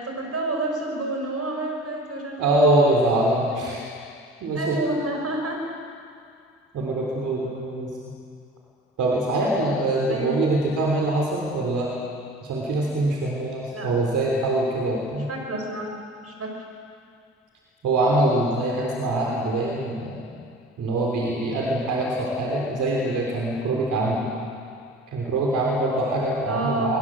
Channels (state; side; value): normal; both; correlation 0.41